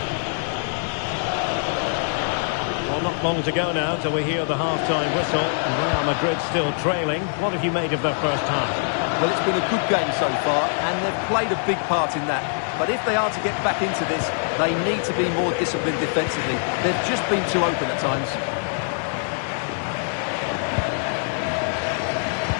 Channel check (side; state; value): right; silent; 63 dB below the other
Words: Well, not long to go now till we hear the half-time whistle. And Real Madrid still trailing. What have you made of their first half? Well, it's been a good game so far, and they've played a big part in that. But if they are to get back into this, they need to be more disciplined defensively. They've just been too open at times.